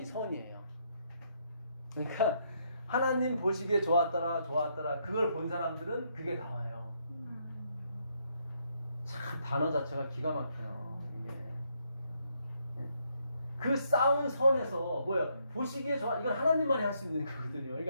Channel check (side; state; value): both; inverted; correlation -0.74